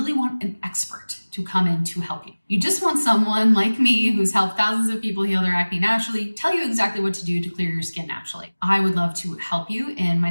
want an expert to come in to help you. You just want someone like me who's helped thousands of people heal their acne naturally, tell you exactly what to do to clear your skin naturally. I would love to help you in my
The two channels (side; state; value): both; inverted; correlation -1.00